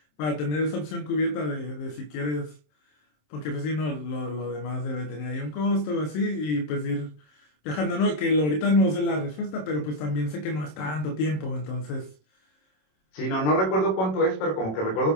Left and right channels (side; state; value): right; late; 27 ms